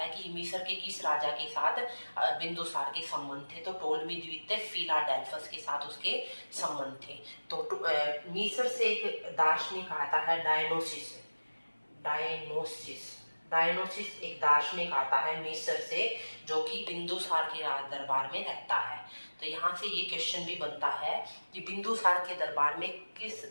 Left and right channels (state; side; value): inverted; both; correlation -1.00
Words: कि मिस्र के किस राजा के साथ बिंदुसार के संबंध थे। तो टोलमी द्वितीय फिलाडेल्फस के साथ उसके संबंध थे। तो मिस्र से एक दार्शनिक आता है डायनोसिस एक दार्शनिक आता है मिस्र से, जो कि बिंदुसार के दरबार में रहता है। तो यहाँ से ये क्वेश्चन भी बनता है कि बिंदुसार के दरबार में